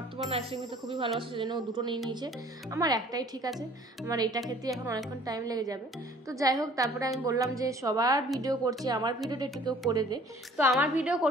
আইসক্রিম খেতে খুবই ভালোবাসে, সেজন্য ও দুটো নিয়ে নিয়েছে। আমার একটাই ঠিক আছে, আমার এটা খেতে এখন অনেকক্ষণ টাইম লেগে যাবে। তো যাই হোক, তারপরে আমি বললাম যে সবার ভিডিও করছি, আমার ভিডিওটা একটু কেউ করে দে। তো আমার ভিডিও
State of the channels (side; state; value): both; normal; correlation 0.53